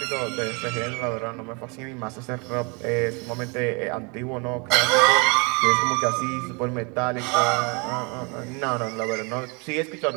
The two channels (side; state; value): left; quieter; 31.5 dB